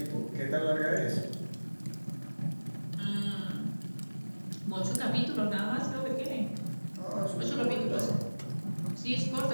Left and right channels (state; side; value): inverted; both; correlation -1.00